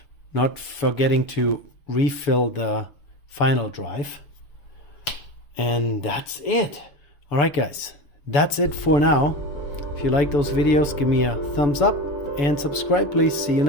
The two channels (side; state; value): right; late; 7.0 ms